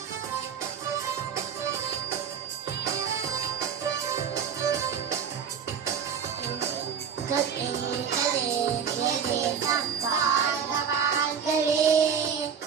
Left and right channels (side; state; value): left; quieter; 7.2 dB